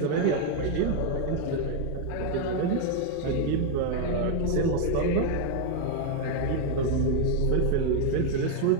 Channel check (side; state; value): both; different; correlation 0.01